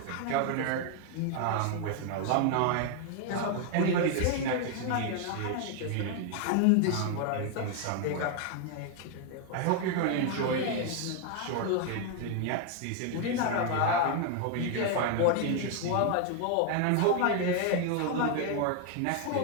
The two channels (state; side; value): different; both; correlation 0.00